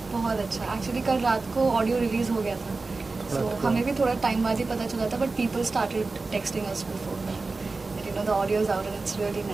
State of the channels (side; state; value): left; quieter; 3.7 dB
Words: बहुत अच्छा। एक्चुअली कल रात को ऑडियो रिलीज हो गया था, सो हमें भी थोड़ा टाइम बाद ही पता चला था, but people started texting us before that, you know, the audio is out and it's really